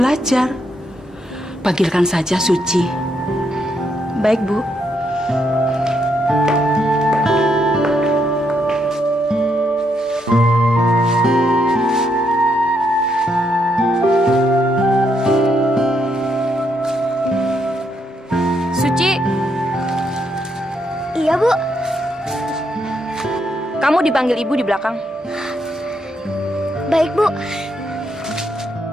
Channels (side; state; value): both; normal; correlation 0.77